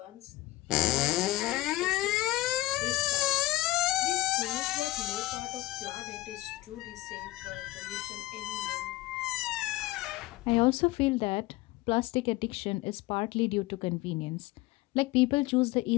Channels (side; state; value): right; quieter; 18.4 dB